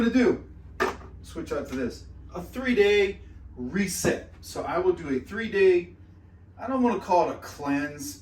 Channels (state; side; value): identical; both; correlation 1.00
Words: to do, switch out to this, a 3-day reset. So I will do a 3-day, I don't want to call it a cleanse,